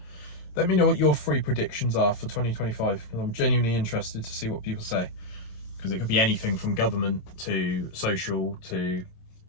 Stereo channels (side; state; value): right; late; 26 ms